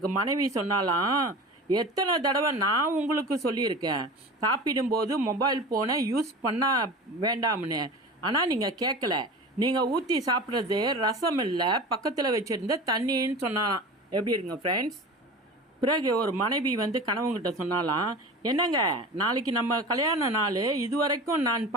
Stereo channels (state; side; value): normal; both; correlation 0.34